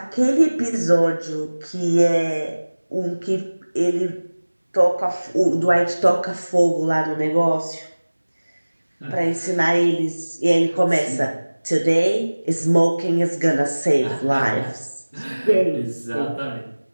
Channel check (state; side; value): inverted; both; correlation -1.00